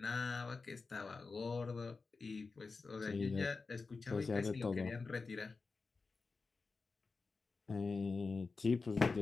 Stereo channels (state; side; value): quieter; right; 4.2 dB